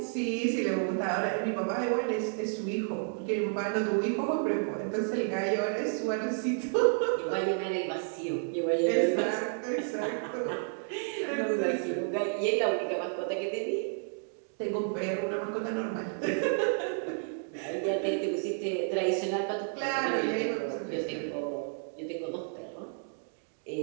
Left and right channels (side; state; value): left; silent; 57 dB below the other